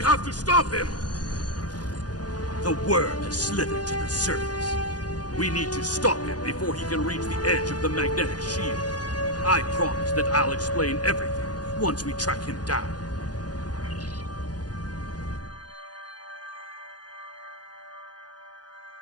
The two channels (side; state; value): right; late; 0.69 ms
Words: have to stop him! The worm has slithered to the surface. We need to stop him before he can reach the edge of the magnetic shield. I promise that I'll explain everything once we track him down.